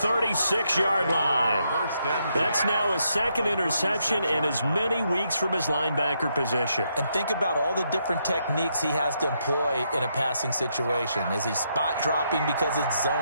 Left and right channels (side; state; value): both; inverted; correlation -0.78